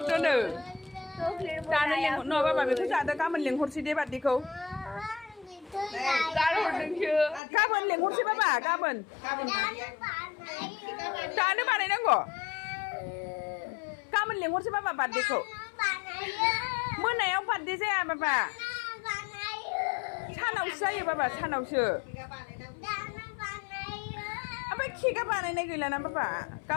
दानो लेंहर न बाबा बेखौ जादो गाबोन लेंहरसै दे बार्डेखौ गाबोन लेंहरसै बाबा गाबोन दानो बानायनांगौ गाबोन लेंहरसै बाबा बार्डेखौ मोनायाव बार्डे जाया बाबा सानावसो जायो बाबा सानावसो ओमफ्राय केकआ बानायनाय गैलाना बाबा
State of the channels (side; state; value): right; drops out; at 7.4 s